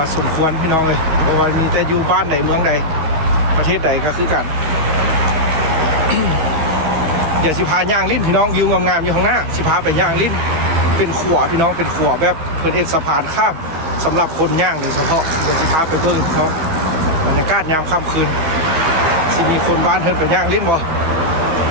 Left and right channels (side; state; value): left; late; 13 ms